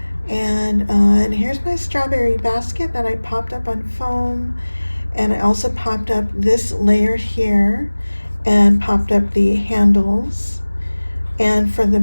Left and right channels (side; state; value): both; inverted; correlation -1.00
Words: And here's my strawberry basket that I popped up on foam. And I also popped up this layer here and popped up the handles. And for the